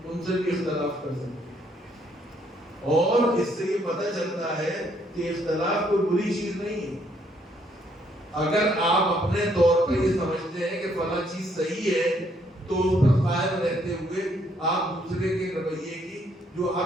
سے بھی اختلاف کر سکتے، اور اس سے یہ پتہ چلتا ہے کہ اختلاف کوئی بری چیز نہیں ہے۔ اگر آپ اپنے طور پر یہ سمجھتے ہیں کہ فلاں چیز صحیح ہے تو اس پر قائم رہتے ہوئے آپ دوسرے کے رویے کی، جو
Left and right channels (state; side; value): normal; both; correlation 0.69